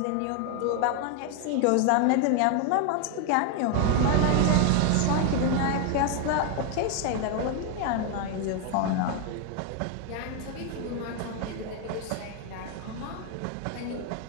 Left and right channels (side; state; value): both; different; correlation 0.01